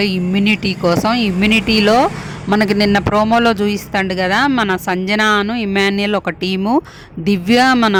ఇమ్యూనిటీ కోసం. ఇమ్యూనిటీలో మనకి నిన్న ప్రోమోలో చూపిస్తాడు కదా, మన సంజనాను ఇమాన్యుయల్ ఒక టీము, దివ్య మన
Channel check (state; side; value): identical; both; correlation 1.00